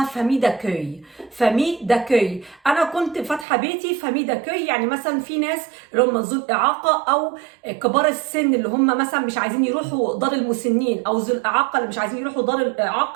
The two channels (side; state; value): left; drops out; at 3.5 s